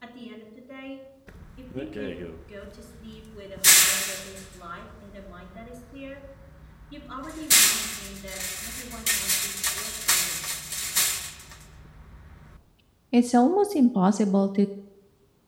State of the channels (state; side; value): identical; both; correlation 1.00